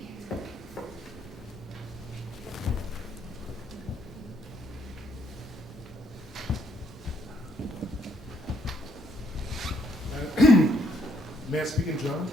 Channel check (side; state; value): both; normal; correlation 0.71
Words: May I speak in German?